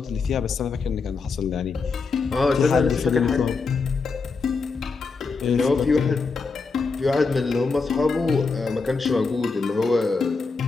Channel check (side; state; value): right; quieter; 4.5 dB